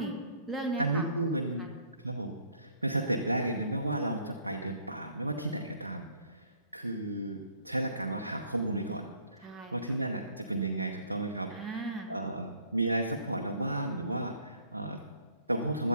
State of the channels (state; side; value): inverted; both; correlation -0.61